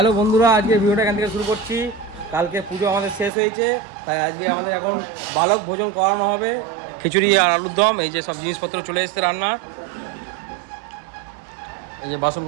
বন্ধুরা, আজকে ভিডিওটা এখান থেকে শুরু করছি। কালকে পুজো আমাদের শেষ হয়েছে, তাই আজকে আমাদের এখন বালক ভোজন করানো হবে। খিচুড়ি আর আলুর দম, এই যে সব জিনিসপত্র চলে এসছে রান্না। এই যে বাসন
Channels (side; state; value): left; drops out; at 3.3 s